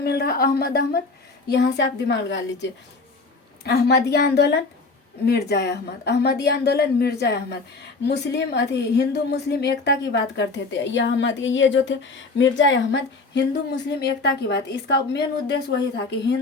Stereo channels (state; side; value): quieter; right; 3.8 dB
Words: रहा अहमद। यहाँ से आप दिमाग लगा लीजिए। अहमदिया आंदोलन मिर्जा अहमद, अहमदिया आंदोलन मिर्जा अहमद। मुस्लिम हिंदू मुस्लिम एकता की बात करते थे। यह अहमद, ये जो थे मिर्जा अहमद, हिंदू मुस्लिम एकता की बात, इसका मेन उद्देश्य वही था कि